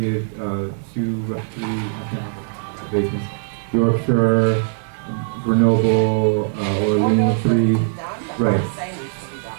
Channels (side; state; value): left; silent; digital silence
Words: 3 renovations. Yorkshire, Grenoble, Orleans, 3, right.